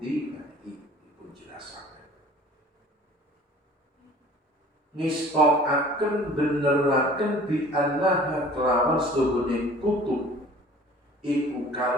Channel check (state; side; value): normal; both; correlation 0.47